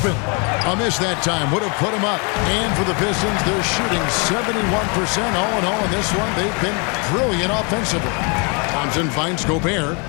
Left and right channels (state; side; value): quieter; right; 33.7 dB